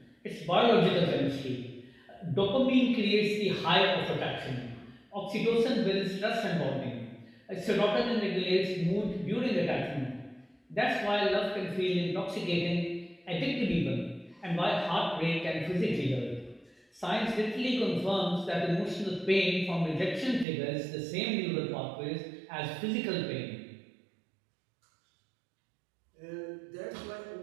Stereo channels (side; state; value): left; drops out; at 20.5 s